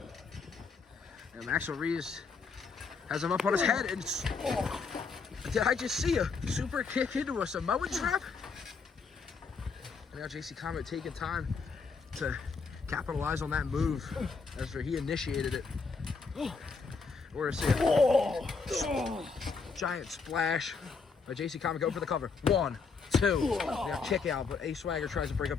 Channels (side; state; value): right; quieter; 4.8 dB